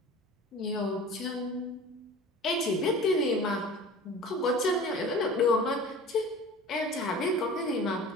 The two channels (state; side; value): normal; both; correlation 0.40